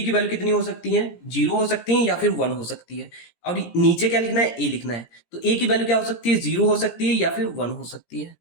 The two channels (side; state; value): right; late; 17 ms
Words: की वैल्यू कितनी हो सकती है, 0 हो सकती है या फिर 1 हो सकती है। और नीचे क्या लिखना है, ए लिखना है। तो ए की वैल्यू क्या हो सकती है, 0 हो सकती है या फिर 1 हो सकती है।